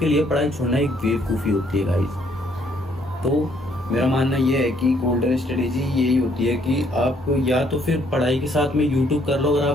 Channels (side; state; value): both; normal; correlation 0.67